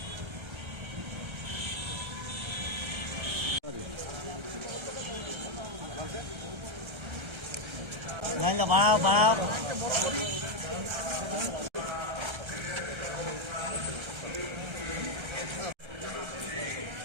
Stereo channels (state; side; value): late; left; 1.3 ms